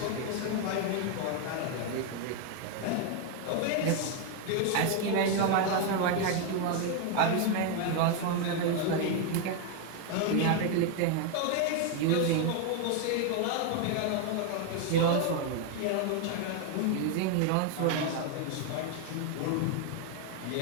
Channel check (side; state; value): both; different; correlation 0.01